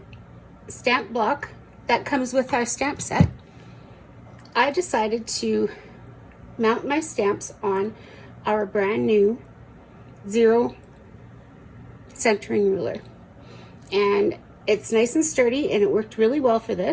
stamp block that comes with our stamp set, I decided to mount my stamps on our brand new 0 centering ruler, and it's nice and sturdy and it worked really well for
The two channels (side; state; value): both; identical; correlation 1.00